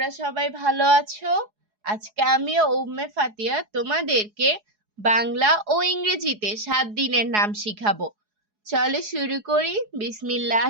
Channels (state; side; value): late; left; 4.8 ms